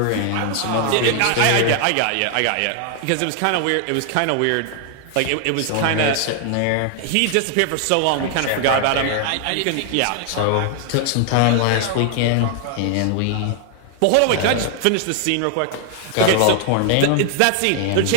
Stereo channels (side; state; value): both; different; correlation 0.00